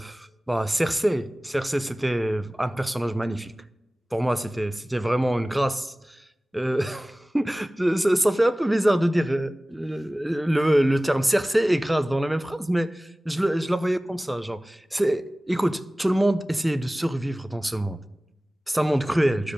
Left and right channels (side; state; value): both; normal; correlation 0.98